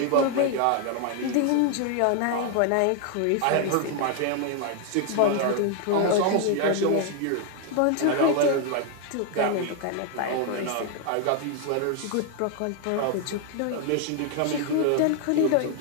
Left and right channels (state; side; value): different; both; correlation 0.00